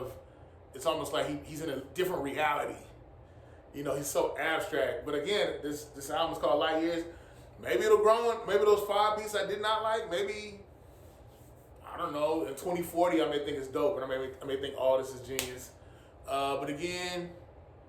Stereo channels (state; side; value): identical; both; correlation 1.00